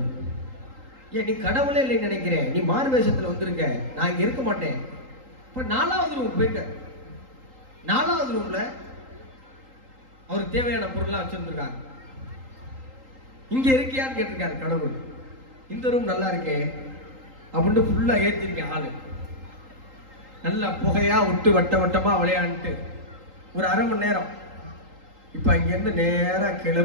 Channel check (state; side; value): late; left; 3.8 ms